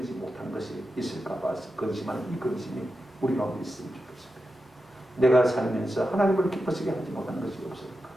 못한 것이 있을까 봐서 근심하는 이 근심이 우리 가운데 있으면 좋겠습니다. 내가 살면서 하나님을 기쁘시게 하지 못한 것이 없을까?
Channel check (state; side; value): normal; both; correlation 0.90